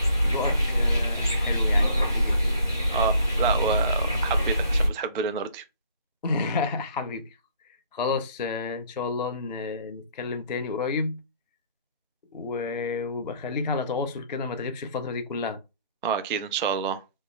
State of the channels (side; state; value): both; inverted; correlation -0.58